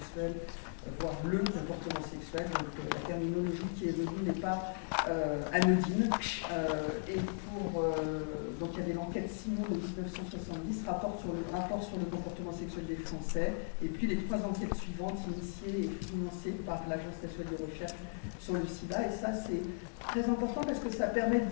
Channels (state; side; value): silent; right; digital silence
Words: voire le comportement sexuel. Donc, la terminologie qui est venue n'est pas anodine. Donc, il y avait l'enquête Simon de 1970, rapport sur le comportement sexuel des Français, et puis les 3 enquêtes suivantes initiées et financées par l'Agence nationale de recherche sur le sida. Et ça, c'est très important parce que ça permet